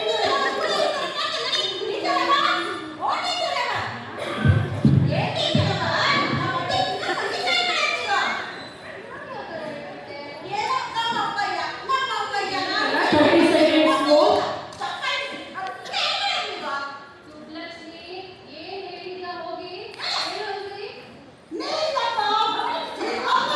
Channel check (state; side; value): identical; both; correlation 1.00